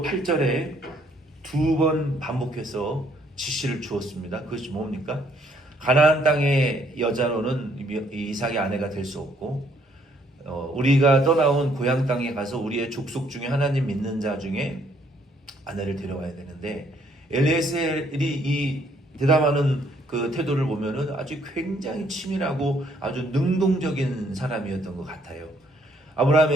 8절에 두 번 반복해서 지시를 주었습니다. 그것이 뭡니까? 가나안 땅의 여자로는 이삭의 아내가 될 수 없고, 우리가 떠나온 고향 땅에 가서 우리의 족속 중에 하나님 믿는 자 중에 아내를 데려와야 되는데, 엘리에셀이 이 대담하는 그 태도를 보면은 아주 굉장히 치밀하고 아주 능동적인 사람이었던 것 같아요.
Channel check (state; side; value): normal; both; correlation 0.67